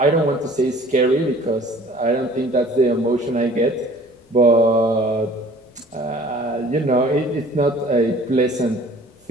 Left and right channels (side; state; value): both; normal; correlation 0.50